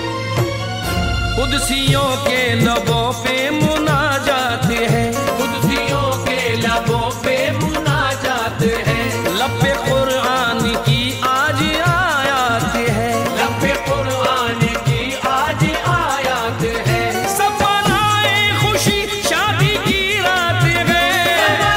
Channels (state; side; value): identical; both; correlation 1.00